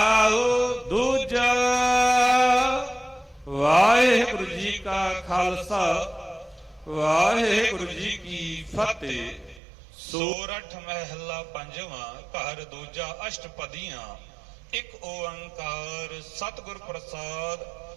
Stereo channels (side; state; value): left; drops out; at 9.6 s